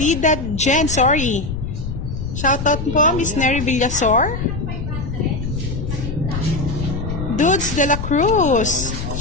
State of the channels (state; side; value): noise; left; rumble, 5 dB below the sound